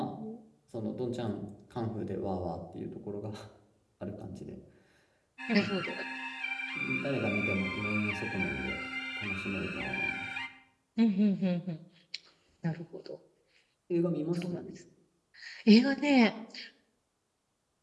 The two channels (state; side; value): identical; both; correlation 1.00